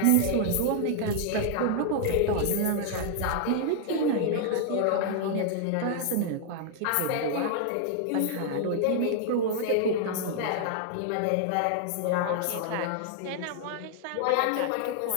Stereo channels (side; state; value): both; different; correlation 0.00